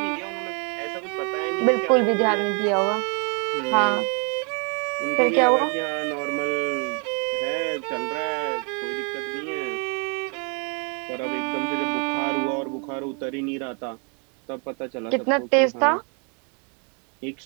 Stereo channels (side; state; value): left; quieter; 37.2 dB